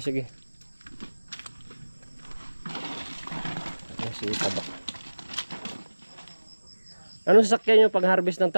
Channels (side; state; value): both; inverted; correlation -1.00